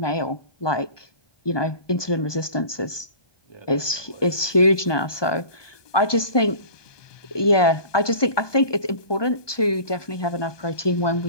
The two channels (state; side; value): late; right; 1.2 ms